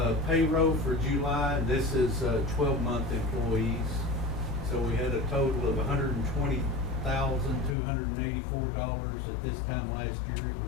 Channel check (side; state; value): right; drops out; at 7.8 s